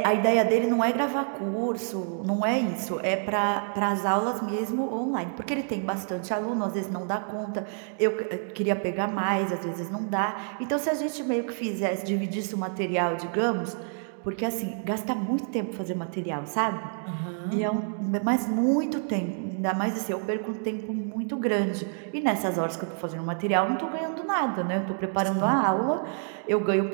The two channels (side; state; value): left; silent; 60 dB below the other